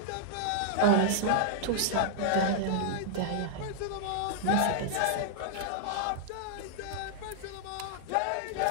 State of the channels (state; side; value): different; both; correlation -0.01